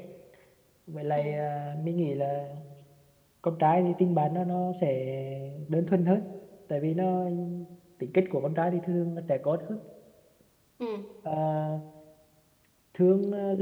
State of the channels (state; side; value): identical; both; correlation 1.00